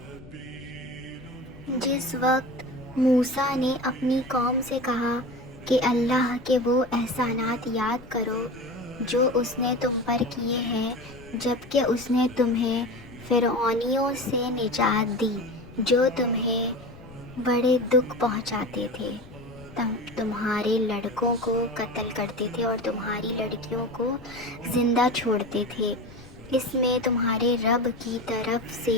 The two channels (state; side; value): noise; left; rumble, 19 dB below the sound